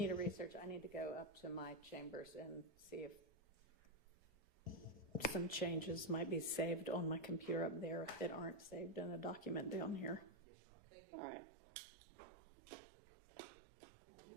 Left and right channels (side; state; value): left; drops out; at 10.4 s